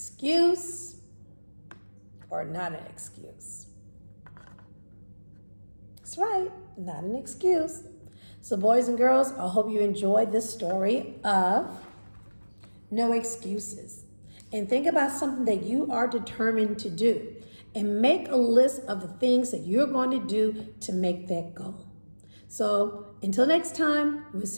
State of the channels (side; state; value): both; inverted; correlation -1.00